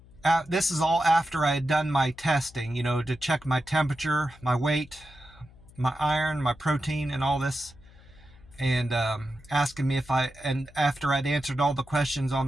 This is all after I had done my testing, to check my temperature, my weight, my iron, my protein, and all this and asking me and after I'd answered all the questions on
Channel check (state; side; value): noise; left; hum, 24 dB below the sound